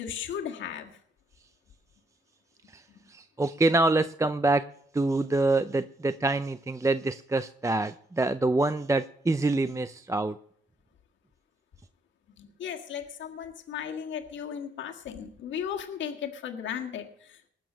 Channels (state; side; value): normal; both; correlation 0.73